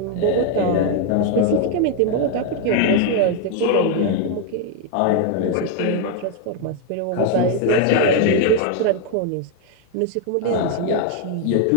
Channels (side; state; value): both; different; correlation 0.01